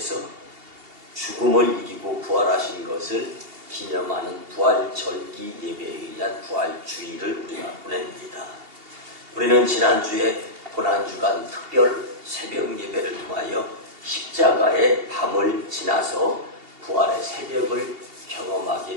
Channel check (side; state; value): left; late; 2.8 ms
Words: 죽음을 이기고 부활하신 것을 기념하는 부활절기 예배에 의한 부활주일을 우리가 보냅니다. 우리는 지난주에 고난주간 특별 새벽 예배를 통하여 십자가의 밤을 지나서 부활의 새벽을